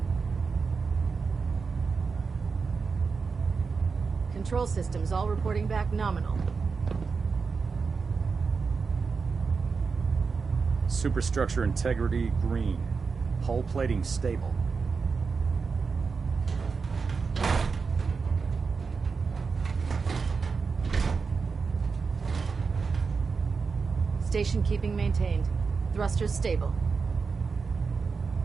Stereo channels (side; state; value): left; quieter; 5.0 dB